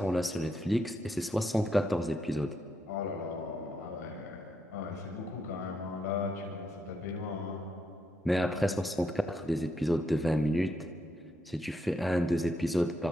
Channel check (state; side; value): normal; both; correlation 0.80